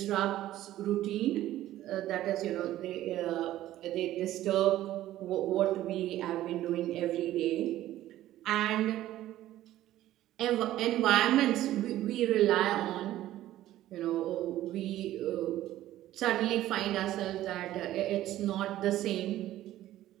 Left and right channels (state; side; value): quieter; left; 14.0 dB